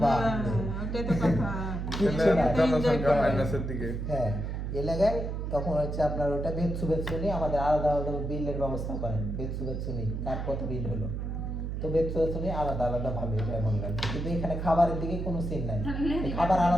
বা ওটাই তো কথা। কিচ্ছু নাই। জনসংখ্যা মাইনাসের দিকে। হ্যাঁ, এলাকায় তখন হচ্ছে আপনার ওটা বেতসু বেতসু নিয়ে আমাদের আলাদা আলাদা বিলের ব্যবস্থা করেন। বেতসু বেতসু নিয়ে কার কত বিল হলো, তো বেতসু বেতসু নিয়ে আলাদা আলাদা ভাবে এটা এমন লাগে। কিন্তু এখানে খাবারের দিকে কোনো সিন নাই, খাবার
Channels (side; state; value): right; noise; hum, 3 dB below the sound